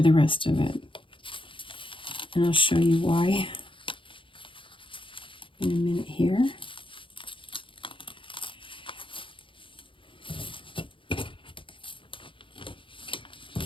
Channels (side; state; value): right; late; 0.25 ms